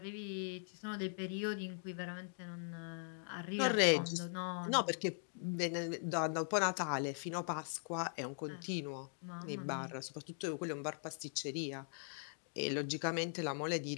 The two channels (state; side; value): silent; right; digital silence